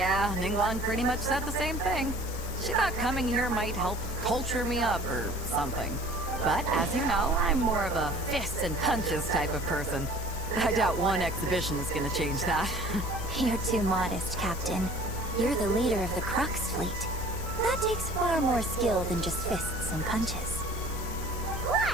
Ningguang pretty much said the same thing. She thought coming here might help culture me up or something. But as you know, I'm more of a fists and punches type of person. I doubt one exhibition is gonna change that. You're too modest, Captain. You're the leader of the Crux fleet. That takes far more skill than just fists and punches.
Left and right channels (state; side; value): normal; both; correlation 0.48